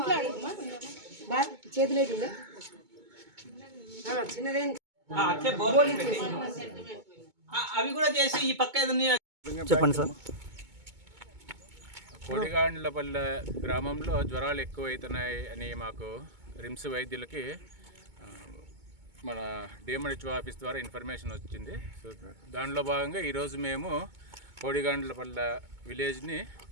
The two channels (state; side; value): late; left; 2.2 ms